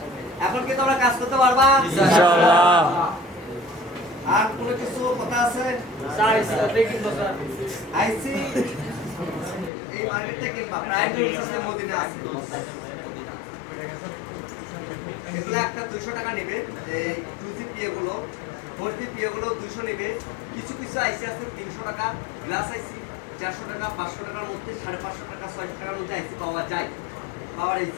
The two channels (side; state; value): right; drops out; at 9.7 s